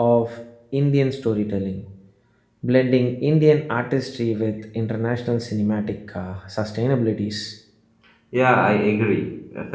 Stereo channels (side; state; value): both; identical; correlation 1.00